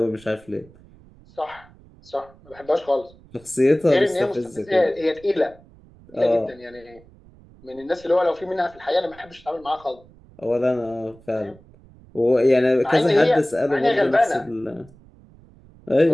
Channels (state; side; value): noise; right; rumble, 25 dB below the sound